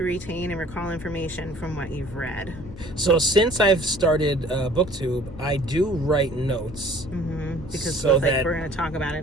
retain and recall information from what you've read? So since I've started BookTube, I do write notes. Because so like we're going to talk about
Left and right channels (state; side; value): noise; left; hum, 16 dB below the sound